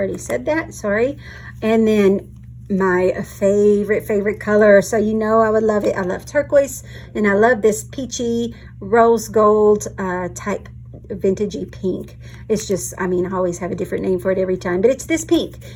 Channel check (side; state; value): both; identical; correlation 1.00